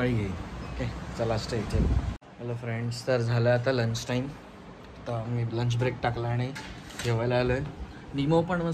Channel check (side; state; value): both; identical; correlation 1.00